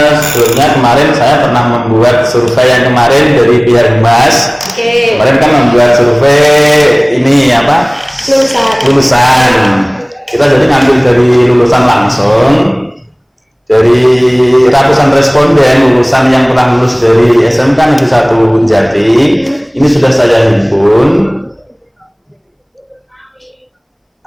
Sebelumnya kemarin saya pernah membuat survei yang kemarin dari pihak Mas. Oke. Kemarin kan membuat survei ini apa? Lulusan. Kita jadi ngambil dari lulusan langsung, dari ratusan responden lulusan yang pernah lulus dari SMK Negeri 1 Jati. Ini sudah saya himpun.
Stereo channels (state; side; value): identical; both; correlation 1.00